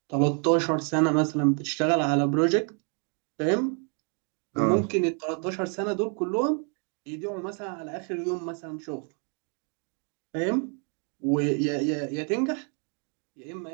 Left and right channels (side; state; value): left; quieter; 39.5 dB